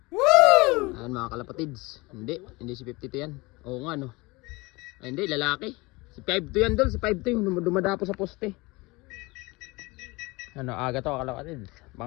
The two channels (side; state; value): right; quieter; 23.8 dB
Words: Ayan mga kalapatids, hindi si 52 yan. Oo nga no. Ay, hindi, lalaki. Si 52 yan doon, si 52 yung dumadapo sa poste. Aga to kalapatids.